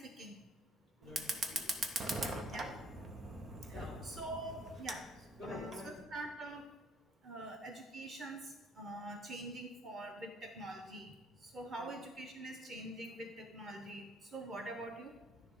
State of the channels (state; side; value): normal; both; correlation 0.62